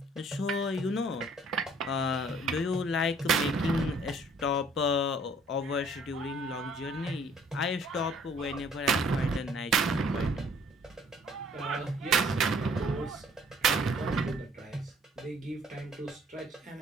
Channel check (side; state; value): both; normal; correlation 0.58